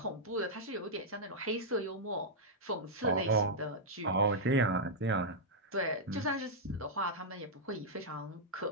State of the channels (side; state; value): both; normal; correlation -0.07